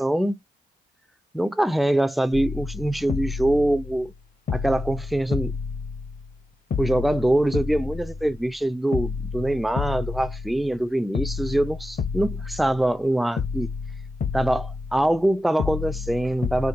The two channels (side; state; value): both; normal; correlation 0.92